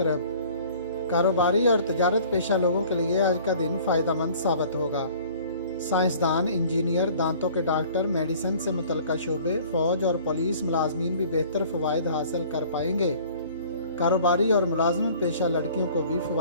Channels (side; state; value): both; inverted; correlation -0.50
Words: कारोबारी और तजारत पेशा लोगों के लिए आज का दिन फ़ायदेमंद साबित होगा। साइंसदान, इंजीनियर, दांतों के डॉक्टर, मेडिसिन से मुतल्लिका शोबे, फ़ौज और पुलिस मुलाजमीन भी बेहतर फ़वाइद हासिल कर पाएंगे। कारोबारी और मुलाजमत पेशा लड़कियों को भी